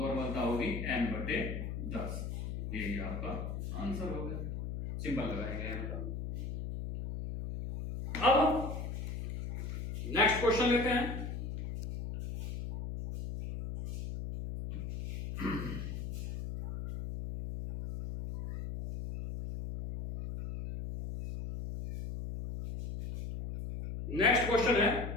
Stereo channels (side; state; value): left; noise; hum, 5 dB below the sound